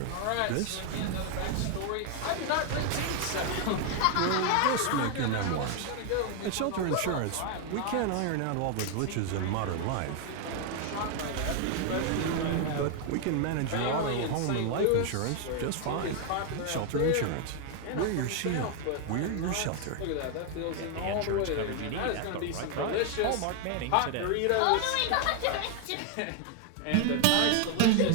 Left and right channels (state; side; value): different; both; correlation 0.00